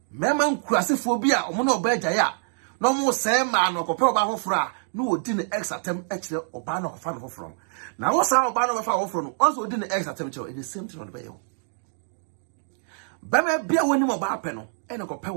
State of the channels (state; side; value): silent; left; digital silence